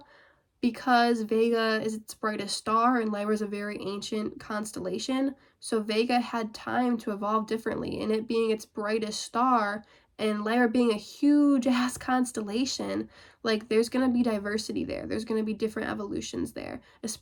because Vega is its brightest star and Lyra is a very ancient constellation, so Vega had time to evolve differently, and it being its brightest star and Lyra being a huge ass constellation, like there's going to be diversity there. There's going to be different evolutions there,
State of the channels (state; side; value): identical; both; correlation 1.00